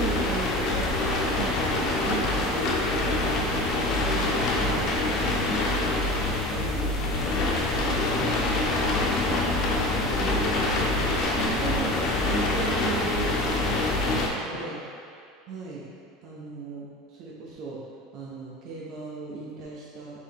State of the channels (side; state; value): both; normal; correlation 0.34